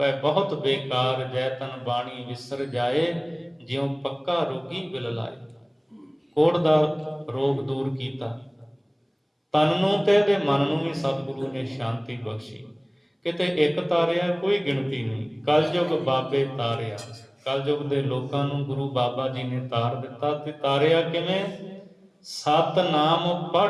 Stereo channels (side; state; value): both; identical; correlation 1.00